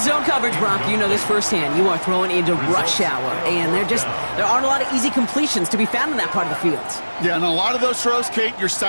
zone coverage, Brock. You know this firsthand. You are throwing into rush hour, and there aren't a lot of easy completions to be found in that part of the field. Yeah, and a lot of those throws, Kate, you're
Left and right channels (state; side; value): inverted; both; correlation -1.00